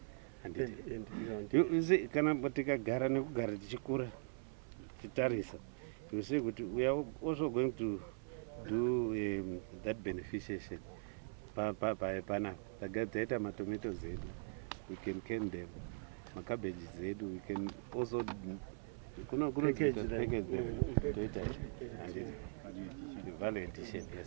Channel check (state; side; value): silent; left; 50 dB below the other